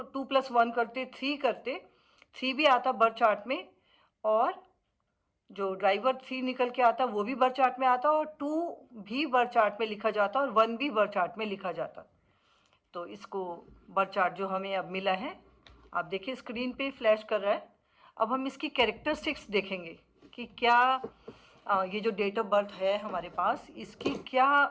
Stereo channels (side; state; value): both; identical; correlation 1.00